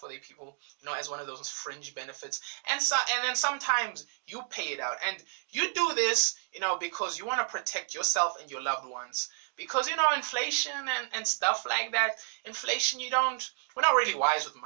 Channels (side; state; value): left; silent; digital silence